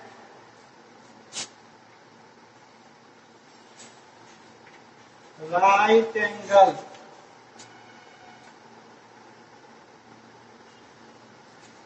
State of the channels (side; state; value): both; identical; correlation 1.00